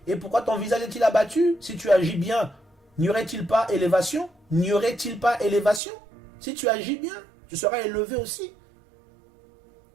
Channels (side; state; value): left; drops out; at 5.8 s